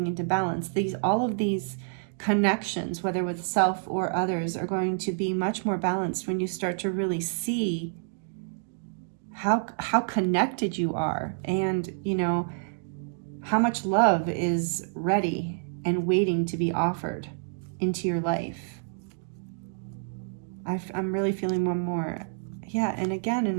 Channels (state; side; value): silent; left; digital silence